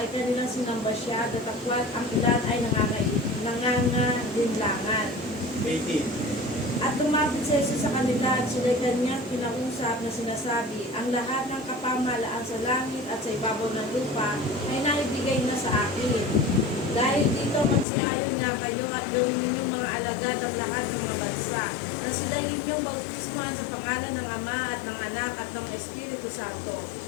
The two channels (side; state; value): right; drops out; at 17.9 s